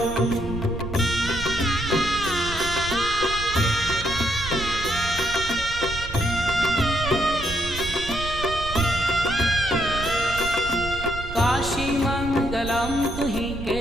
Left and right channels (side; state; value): right; noise; rumble, 9 dB below the sound